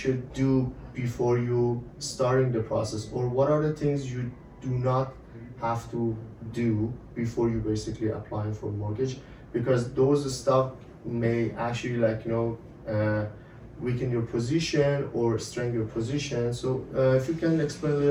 do before you starting the process, or what are the things you do not have to do before you basically applying for mortgage, because those stuff may actually weaken your position or strengthen your position. So if you can explain a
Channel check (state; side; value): identical; both; correlation 1.00